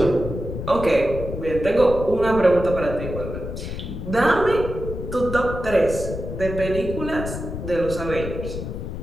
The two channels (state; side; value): noise; left; rumble, 7 dB below the sound